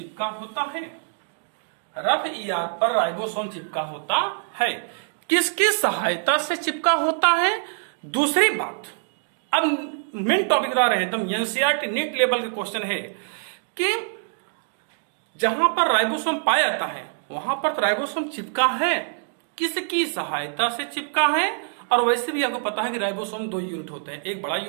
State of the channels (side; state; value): left; silent; digital silence